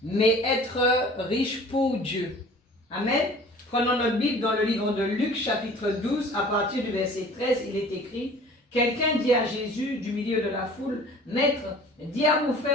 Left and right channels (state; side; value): normal; both; correlation 0.46